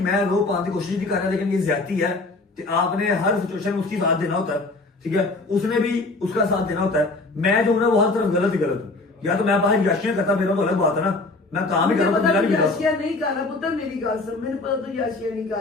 मैं रो पाने की कोशिश नहीं कर रहा, लेकिन ये ज्यादती है कि आपने हर सिचुएशन में उसकी साथ देना होता है, ठीक है, उसने भी उसका साथ देना होता है। मैं जो हूं ना वो हर तरफ गलत ही गलत हूँ, या तो मैं बाहर याशियां करता, मेरा तो अलग बात है ना, मैं काम ही कर रहा हूं, याशिया नहीं कर रहा पुत्र, मेरी गाल सुन, मैंने पता तो याशिया नहीं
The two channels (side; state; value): right; quieter; 3.3 dB